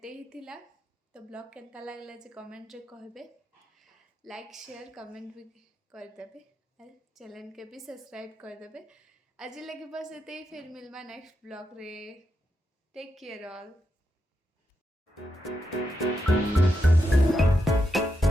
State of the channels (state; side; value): normal; both; correlation 0.85